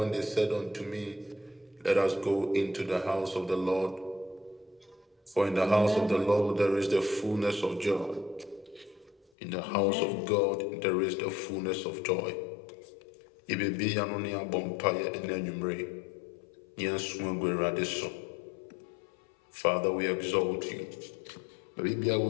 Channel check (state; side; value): drops out; right; at 9.2 s